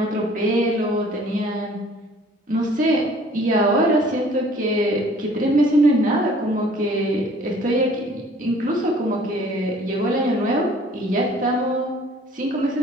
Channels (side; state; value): both; normal; correlation 0.54